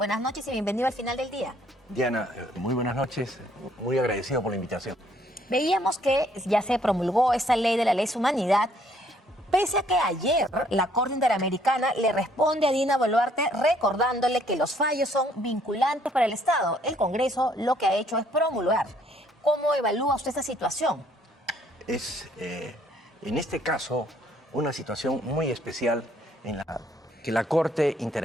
noches y bienvenido al final del día. Diana, muy buenas noches, muy agradecido por la invitación. Veíamos que ya se promulgó esta ley de la lesa humanidad, pese a que ayer la Corte Interamericana le responde a Dina Boluarte recordándole que los fallos son vinculantes para el Estado. El Congreso lo que ha hecho es promulgar. ¿Cómo evalúa usted esta situación? Es, en este caso, una situación muy especial en la que la Corte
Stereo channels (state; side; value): normal; both; correlation 0.65